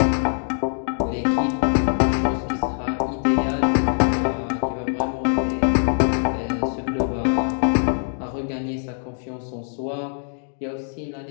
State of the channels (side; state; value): right; silent; digital silence